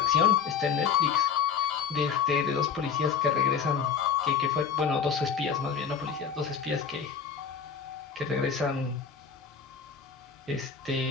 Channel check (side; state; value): right; quieter; 6.8 dB